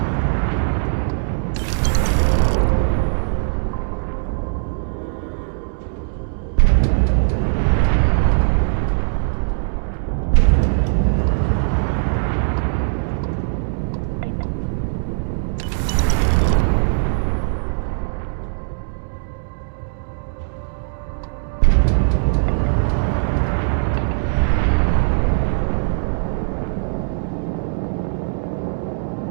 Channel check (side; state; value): left; silent; digital silence